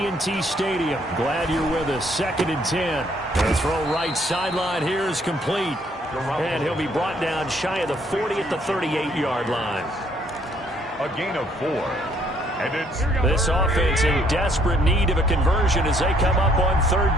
Stadium. Glad you're with us. 2nd and 10. The throw right sideline here is complete. And he'll be brought down shy of the 40 at the 38-yard line. A gain of 4. And it's this offense in desperate need of a conversion as they come up on 3rd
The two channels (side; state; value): both; normal; correlation 0.66